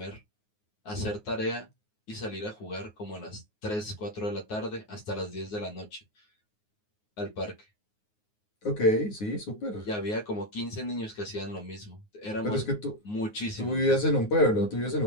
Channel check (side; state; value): right; late; 9.5 ms